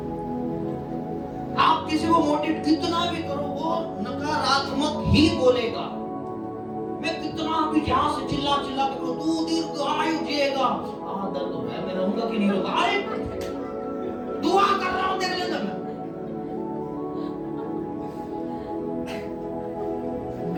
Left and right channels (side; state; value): both; identical; correlation 1.00